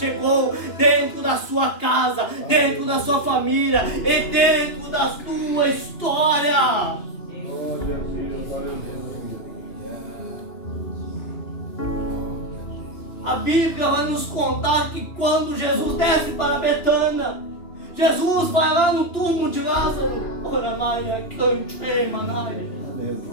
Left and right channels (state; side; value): late; right; 2.9 ms